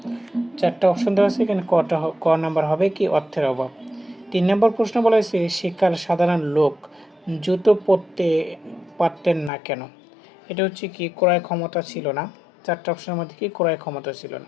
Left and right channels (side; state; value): right; drops out; at 9.5 s